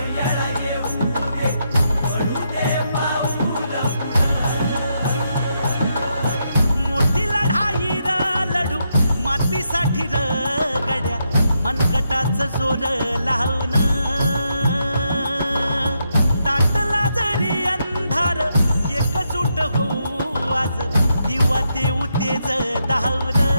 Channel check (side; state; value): both; inverted; correlation -0.81